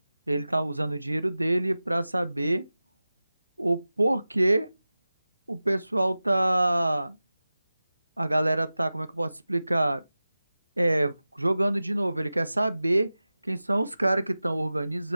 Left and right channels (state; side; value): inverted; both; correlation -0.96